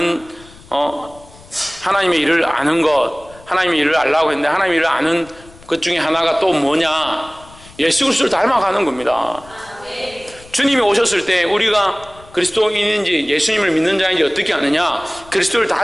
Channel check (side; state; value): left; noise; rumble, 23 dB below the sound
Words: 하나님의 일을 아는 것, 하나님의 일을 알라고 했는데 하나님의 일을 아는 것 중에 하나가 또 뭐냐? 예수 그리스도를 닮아가는 겁니다. 주님이 오셨을 때 우리가 그리스도인인지 예수님을 믿는 자인지 어떻게 아느냐? 그리스도를